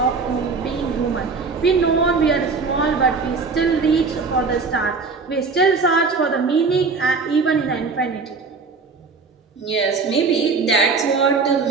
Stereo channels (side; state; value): left; quieter; 4.5 dB